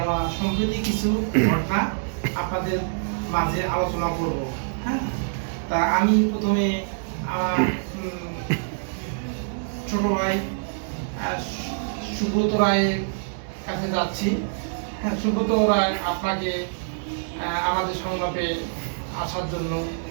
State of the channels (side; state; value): left; silent; digital silence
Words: সম্প্রতি কিছু ঘটনা আপনাদের মাঝে আলোচনা করব। হ্যাঁ, তা আমি প্রথমে আমার ছোট ভাই সুব্রত রায়ের কাছে যাচ্ছি। হ্যাঁ, সুব্রত রায়, আপনাকে আমাদের সংলাপে আসার জন্য